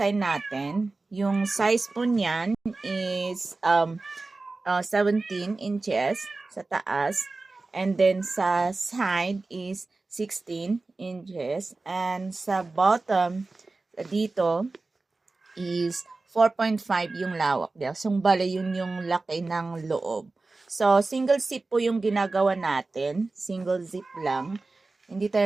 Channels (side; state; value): left; quieter; 3.5 dB